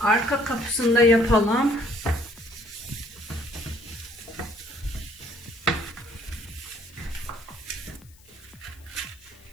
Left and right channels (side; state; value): left; noise; hiss, 26 dB below the sound